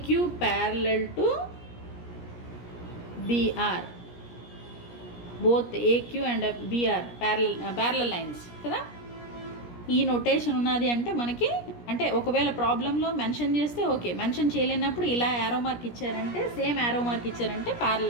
parallel to BR, both AQ and BR parallel lines కదా. ఈ నొటేషన్ ఉన్నది అంటే మనకి, అంటే ఒకవేళ ప్రాబ్లంలో మెన్షన్ చేస్తే okay, mention చేయలేనప్పుడు ఇలా యారో మార్క్ ఇచ్చారంటే, సేమ్ యారో మార్క్ ఇచ్చారంటే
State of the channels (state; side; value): late; right; 17 ms